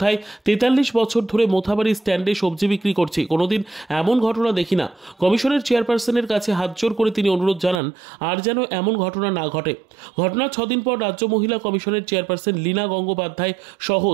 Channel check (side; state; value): left; drops out; at 7.8 s